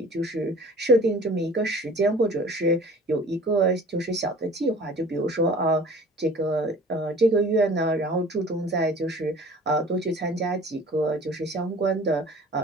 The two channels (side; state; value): both; normal; correlation 0.46